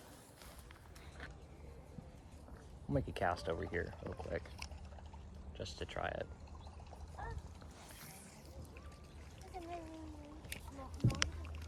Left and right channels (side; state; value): both; identical; correlation 1.00